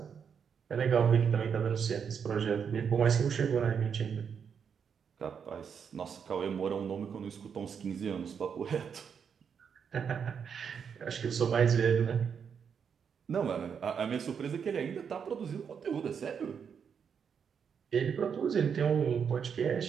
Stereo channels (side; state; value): left; quieter; 7.0 dB